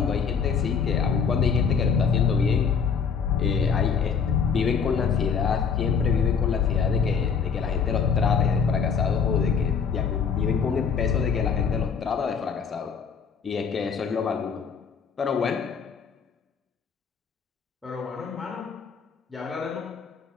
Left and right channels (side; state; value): right; quieter; 6.3 dB